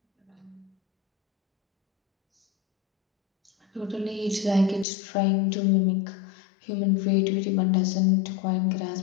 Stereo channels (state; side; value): drops out; right; at 4.9 s